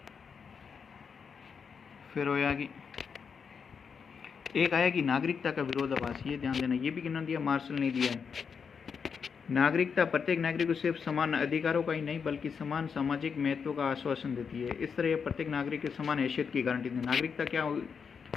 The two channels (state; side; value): quieter; right; 6.2 dB